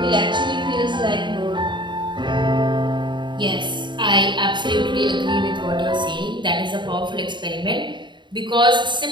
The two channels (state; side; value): late; left; 0.23 ms